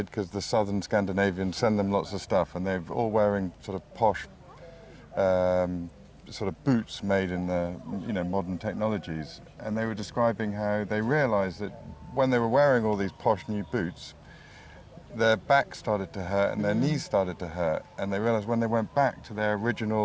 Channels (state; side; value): identical; both; correlation 1.00